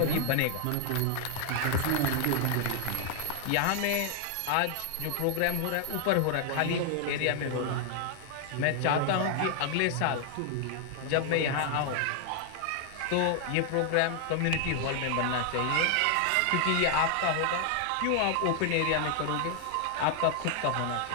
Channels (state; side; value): different; both; correlation 0.00